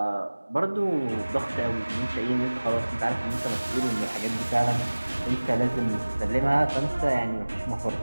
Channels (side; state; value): both; inverted; correlation -1.00